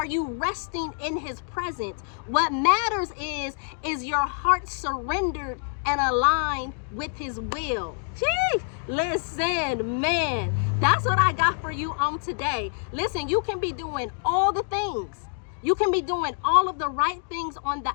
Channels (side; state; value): right; silent; 55 dB below the other